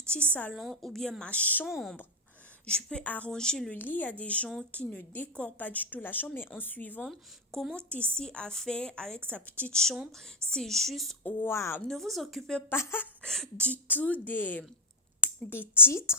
salon ou bien ma chambre. Je peux arranger le lit. Il y a des gens qui ne décorent pas du tout la chambre, mais en suivant comment Tessie a fait avec sa petite chambre, c'est juste waouh. Ne vous occupez pas du tout des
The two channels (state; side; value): normal; both; correlation 0.01